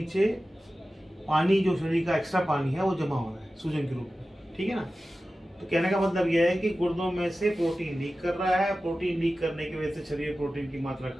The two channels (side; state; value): both; normal; correlation 0.95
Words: पानी, जो शरीर का एक्स्ट्रा पानी है वो जमा हो रहा है सूजन के रूप में, ठीक है ना। तो कहने का मतलब यह है कि गुर्दों में से प्रोटीन लीक कर रहा है। प्रोटीन लीक करने की वजह से शरीर में प्रोटीन की मात्रा